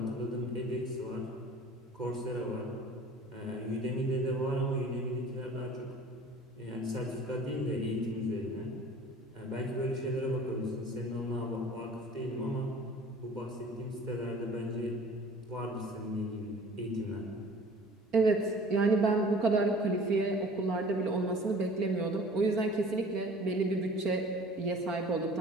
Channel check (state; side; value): normal; both; correlation 0.47